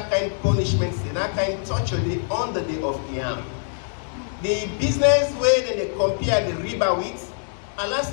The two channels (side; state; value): right; silent; digital silence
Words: kind of punishment, that kind of torture on the day of Qiyam. The business way that they compare the riba with, Allah